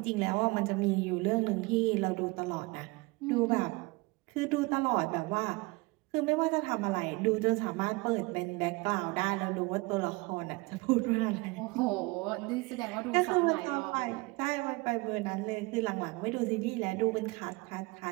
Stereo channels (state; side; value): quieter; left; 25.0 dB